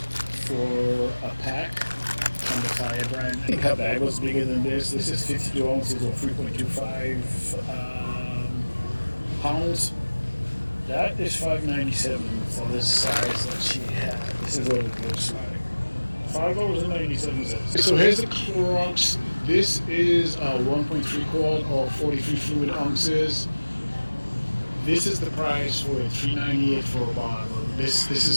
for a pack on the Fire brand. I think her bag was bigger than this. This is 52 ounces or 3.25 pounds. That is $5.97 for this size that she had. This is what it looks like. $5.97. So here's the Clorox. This is a 1.3 quart or 43 fluid ounces. This is the price for it, $3.98 for a bottle. This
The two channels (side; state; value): both; inverted; correlation -1.00